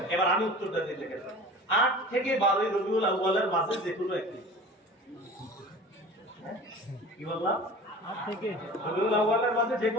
এবার আমি উত্তরটা দিয়ে দেখেন, 8 থেকে 12 রবিউল আউয়ালের মাঝে যে কোনো একটি। কি বললাম? 8 থেকে রবিউল আউয়ালের মাঝে যে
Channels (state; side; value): normal; both; correlation 0.39